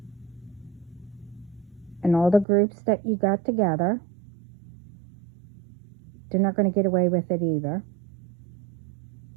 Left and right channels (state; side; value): drops out; left; at 2.5 s